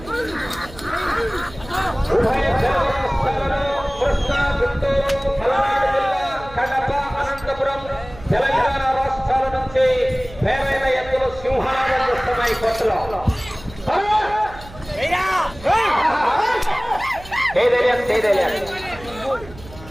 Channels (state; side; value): noise; right; hum, 18 dB below the sound